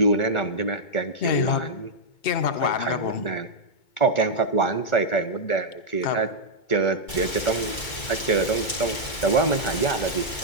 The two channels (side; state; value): right; late; 2.2 ms